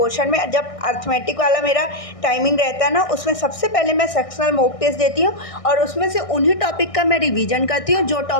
में, जब अर्थमेटिक वाला मेरा टाइमिंग रहता है ना, उसमें सबसे पहले मैं सेक्शनल मॉक टेस्ट देती हूँ, और उसमें से उन्हीं टॉपिक का मैं रिवीजन करती हूँ जो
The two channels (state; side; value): late; right; 1.6 ms